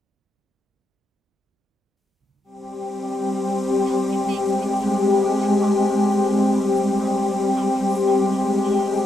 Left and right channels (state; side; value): normal; both; correlation 0.83